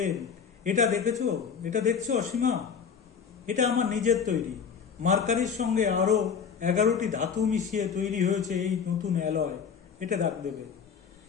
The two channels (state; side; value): quieter; right; 6.7 dB